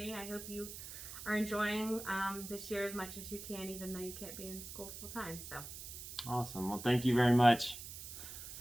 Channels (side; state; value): right; noise; hiss, 10 dB below the sound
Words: I hope you are enjoying this year as much as you can, even though you can't be in school full time. So awesome. Well, thank you very much.